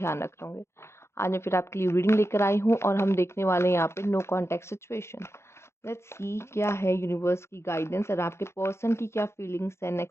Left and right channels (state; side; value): late; right; 0.13 ms